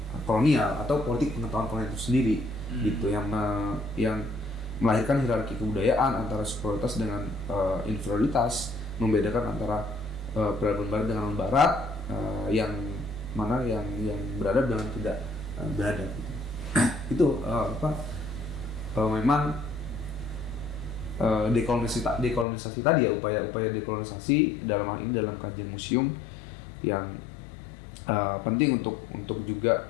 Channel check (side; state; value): right; drops out; at 22.5 s